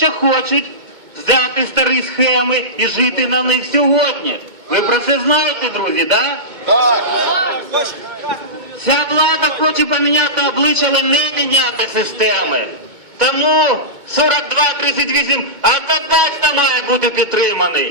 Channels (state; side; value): late; left; 2.2 ms